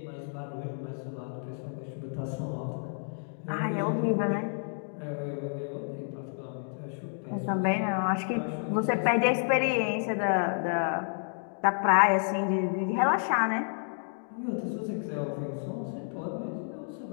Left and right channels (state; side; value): silent; right; digital silence